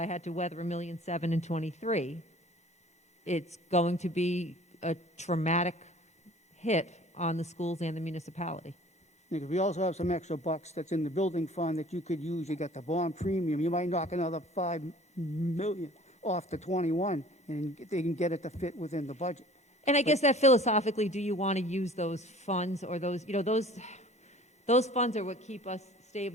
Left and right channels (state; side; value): normal; both; correlation 0.48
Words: had to weather $1.7 million in 23, it's going to be a traumatic hit on the schools and the municipality. Because we also have some extra bucks that's in the building fund that you could use. You got the bond premium. You might knock another $5 million off the 21, and they can get it to fit within the budget. And I guess that philosophically, do you want to use those funds or those, you know, those funds are what keep us